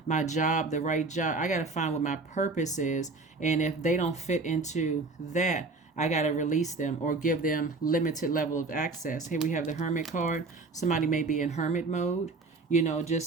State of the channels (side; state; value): left; quieter; 3.7 dB